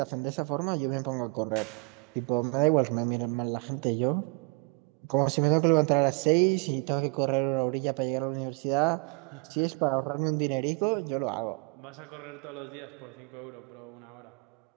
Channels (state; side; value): quieter; left; 30.4 dB